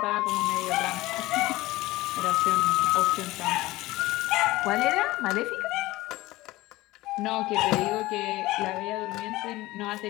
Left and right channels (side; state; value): right; quieter; 18.7 dB